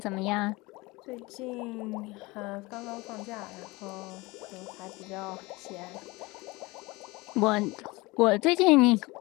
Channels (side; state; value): right; quieter; 23.0 dB